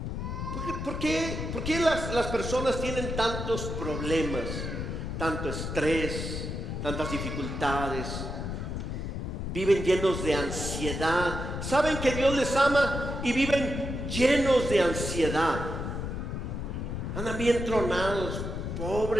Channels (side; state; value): left; noise; rumble, 4 dB below the sound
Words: ¿Por qué las personas tienen tantos problemas, tanto estrés, tantas dificultades? Viven llenos de ansiedad. Saben que Dios les ama y viven llenos de ansiedad. Andan bien tronados,